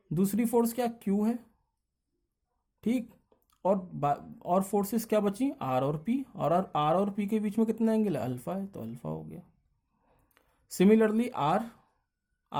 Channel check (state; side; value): identical; both; correlation 1.00